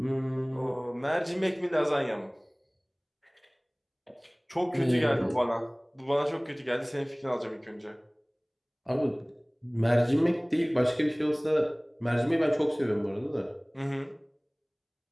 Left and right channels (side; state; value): both; identical; correlation 1.00